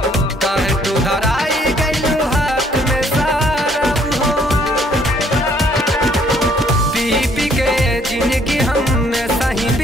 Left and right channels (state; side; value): normal; both; correlation 0.64